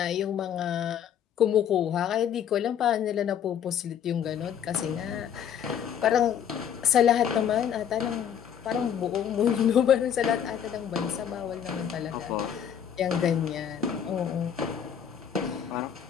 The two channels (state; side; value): quieter; right; 8.8 dB